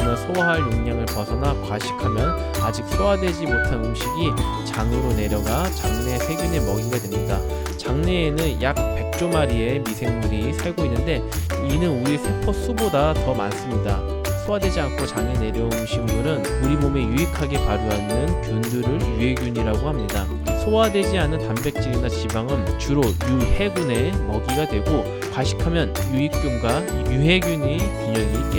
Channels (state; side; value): identical; both; correlation 1.00